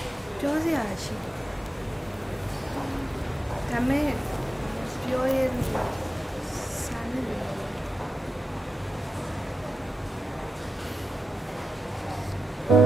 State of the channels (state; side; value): normal; both; correlation 0.90